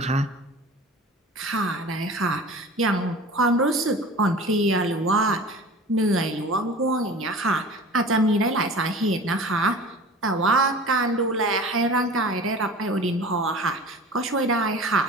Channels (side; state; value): both; normal; correlation 0.39